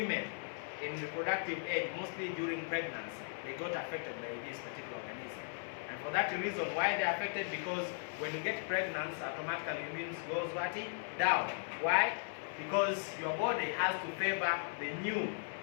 in reproductive age, mostly during pregnancy, they got affected by this particular organism. And for that reason, why they are affected? Because when you get pregnant, automatically immune goes down. Why? Because your body has to favor the new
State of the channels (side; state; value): right; silent; 53 dB below the other